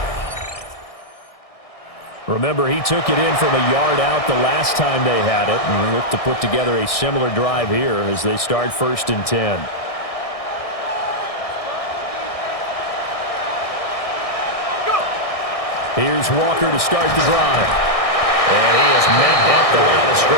Remember, he took it in from a yard out the last time they had it, and we look to put together a similar drive here as they start 1st and 10. Here's Walker to start the drive. And he is met at the line of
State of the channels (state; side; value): late; right; 1.6 ms